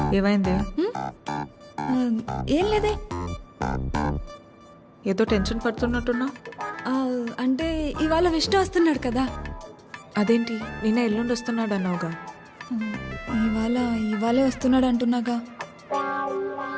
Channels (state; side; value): identical; both; correlation 1.00